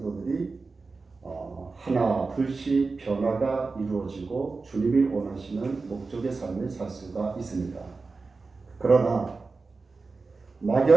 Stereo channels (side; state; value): left; quieter; 4.1 dB